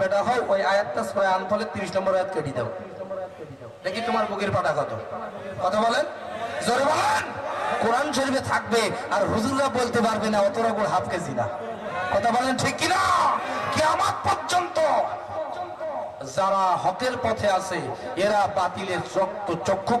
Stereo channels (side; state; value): both; identical; correlation 1.00